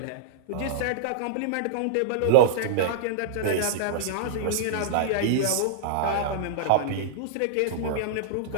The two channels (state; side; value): different; both; correlation -0.02